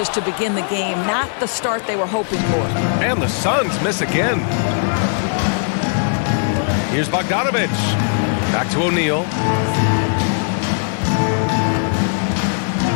to begin the game. Not the start they were hoping for. And the Suns miss again. Here's Bogdanovich. Back to O'Neal.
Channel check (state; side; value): silent; right; 67 dB below the other